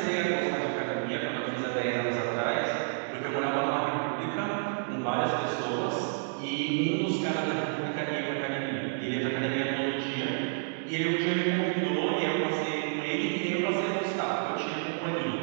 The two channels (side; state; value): left; silent; digital silence